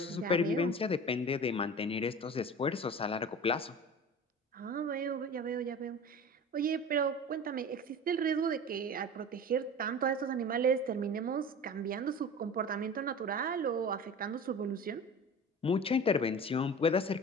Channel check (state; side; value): normal; both; correlation 0.36